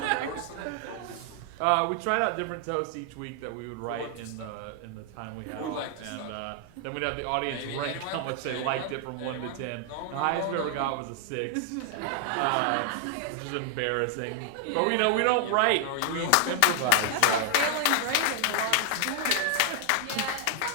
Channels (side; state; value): both; different; correlation 0.00